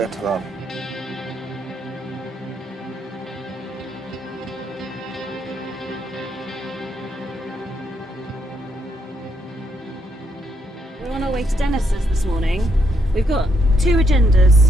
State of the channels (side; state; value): both; normal; correlation 0.76